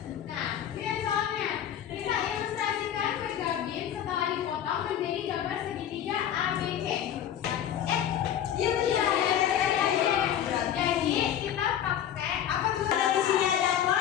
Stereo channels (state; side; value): quieter; right; 10.2 dB